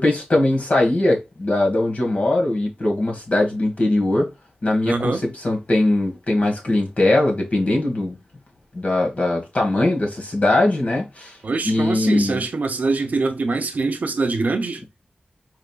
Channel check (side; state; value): both; normal; correlation 0.92